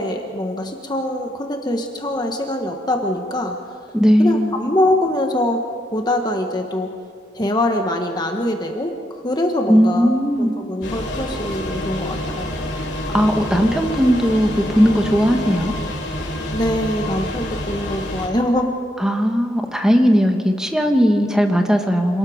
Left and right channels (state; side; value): normal; both; correlation 0.81